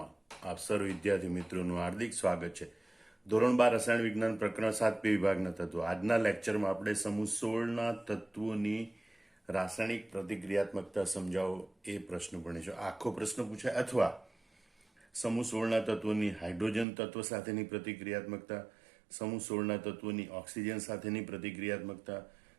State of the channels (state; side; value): drops out; left; at 16.9 s